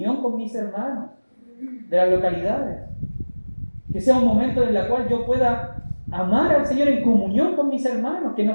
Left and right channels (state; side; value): inverted; both; correlation -1.00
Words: con mis hermanos de las localidades. Que sea un momento en el cual yo pueda amar al Señor en comunión con mis hermanos, que no